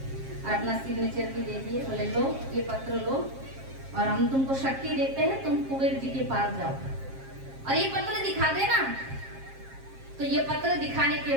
और अपना सिग्नेचर भी दे दिए। बोले, लो ये पत्र लो और हम तुमको शक्ति देते हैं, तुम कुबेर जी के पास जाओ और ये पत्र दिखा देना। तो ये पत्र दिखाने के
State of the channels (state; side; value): late; left; 7.5 ms